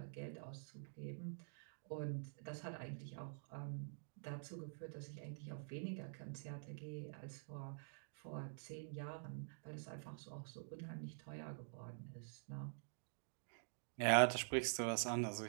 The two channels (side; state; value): left; silent; digital silence